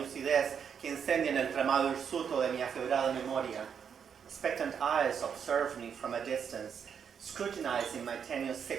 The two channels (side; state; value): left; quieter; 7.3 dB